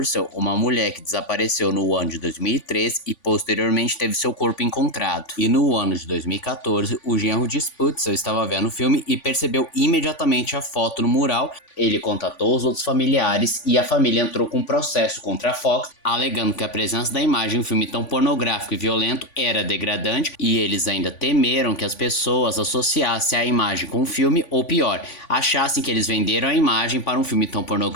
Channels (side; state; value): right; late; 3.5 ms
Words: uma mulher que desapareceu no ano de 2013 e posteriormente teve seu corpo encontrado. E no ano de 2014, o genro de Sputzel estava vendo o filme e percebeu imediatamente a foto no mural. Ele contatou os outros familiares e a família entrou com um processo contra a Fox, alegando que a presença da imagem em um filme tão pornográfico e violento era degradante, e eles ainda temeram que as pessoas associassem a imagem com o filme, ou pior, achassem que eles venderam a imagem para um filme tão